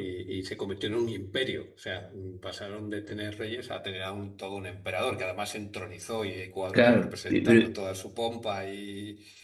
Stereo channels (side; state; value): both; identical; correlation 1.00